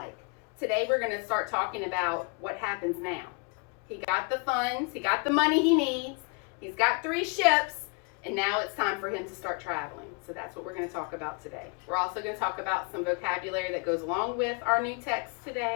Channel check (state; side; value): quieter; right; 34.1 dB